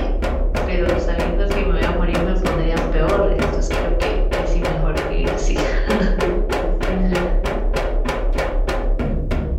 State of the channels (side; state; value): both; identical; correlation 1.00